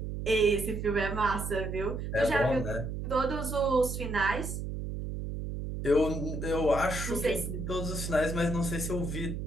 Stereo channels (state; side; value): noise; right; hum, 5 dB below the sound